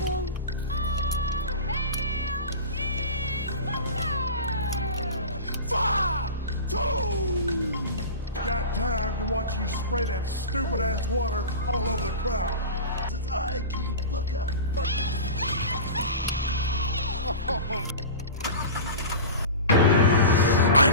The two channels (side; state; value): both; inverted; correlation -0.31